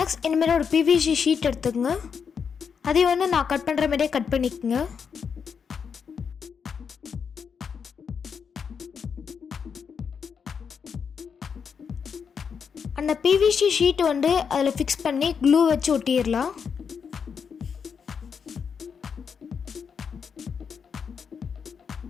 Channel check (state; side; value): quieter; right; 6.5 dB